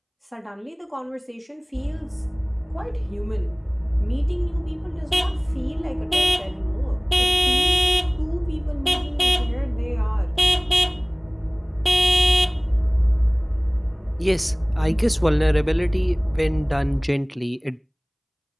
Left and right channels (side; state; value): both; identical; correlation 1.00